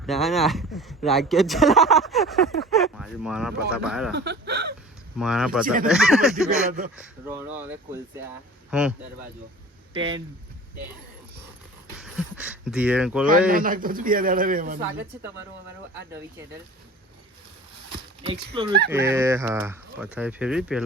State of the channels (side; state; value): both; normal; correlation 0.42